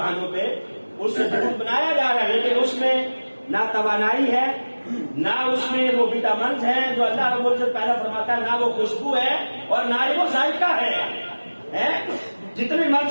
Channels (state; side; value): inverted; both; correlation -1.00